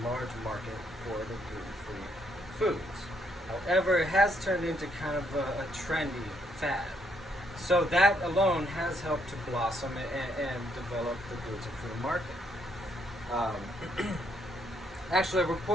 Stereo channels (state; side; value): normal; both; correlation 0.73